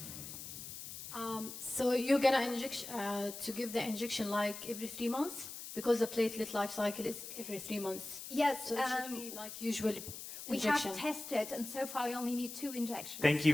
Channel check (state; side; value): noise; left; hiss, 10 dB below the sound